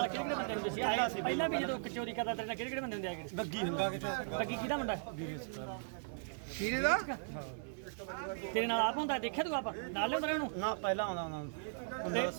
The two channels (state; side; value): silent; left; digital silence